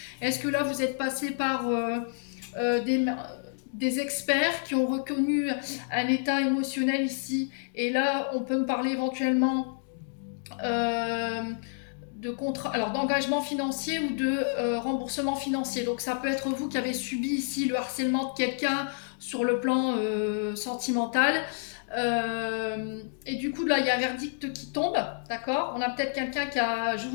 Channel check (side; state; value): right; silent; digital silence